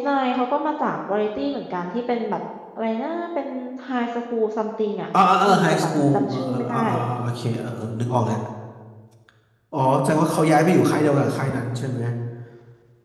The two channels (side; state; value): both; identical; correlation 1.00